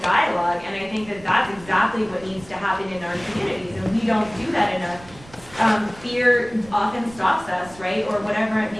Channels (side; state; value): right; noise; rumble, 21 dB below the sound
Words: dialogue, and I think that that's exactly what needs to happen in our communities, and we don't do that enough. Fear often stops us, right, or whatever it